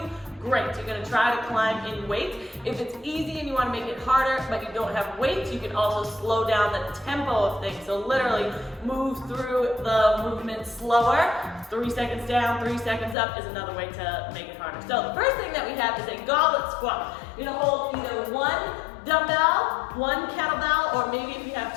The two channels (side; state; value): right; drops out; at 13.2 s